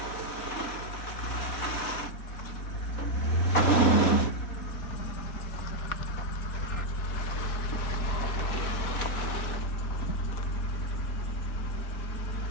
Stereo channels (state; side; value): late; right; 4.2 ms